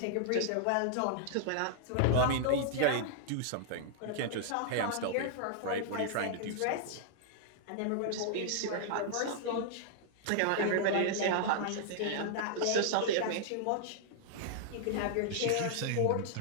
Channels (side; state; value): both; different; correlation -0.01